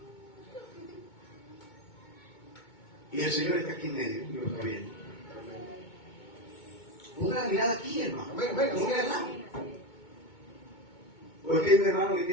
Y el Señor está aquí en medio, y lo está viendo. Ponga la mirada aquí, hermano. Amén, amén. No vea nada. Porque hay un hermano que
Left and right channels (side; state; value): right; late; 2.2 ms